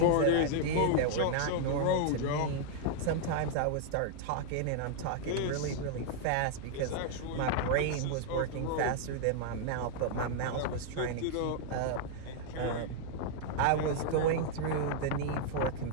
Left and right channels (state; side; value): different; both; correlation -0.01